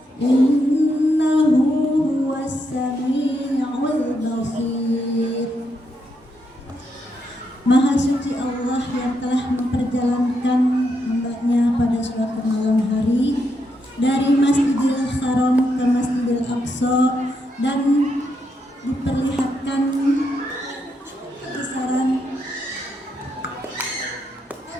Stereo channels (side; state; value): both; normal; correlation 0.80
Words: innahu huwas sami'ul basir. Maha suci Allah yang telah memperjalankan hamba-Nya pada suatu malam hari dari Masjidil Haram ke Masjidil Aqsa dan diperlihatkan kebesaran